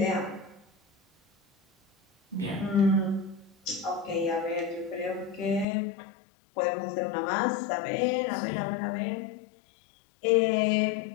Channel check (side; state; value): right; drops out; at 5.7 s